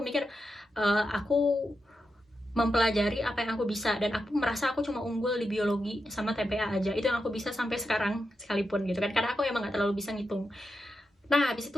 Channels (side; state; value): both; normal; correlation 0.87